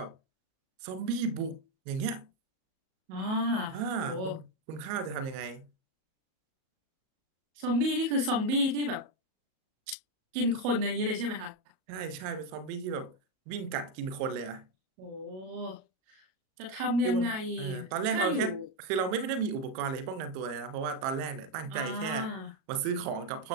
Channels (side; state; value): left; late; 37 ms